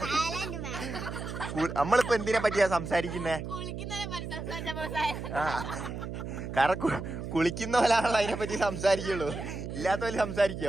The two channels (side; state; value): right; noise; hum, 7 dB below the sound